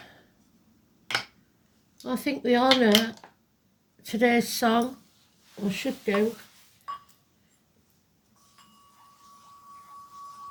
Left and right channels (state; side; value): identical; both; correlation 1.00